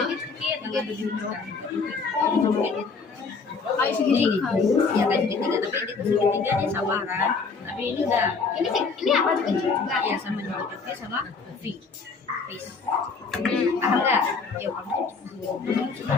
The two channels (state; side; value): quieter; right; 4.7 dB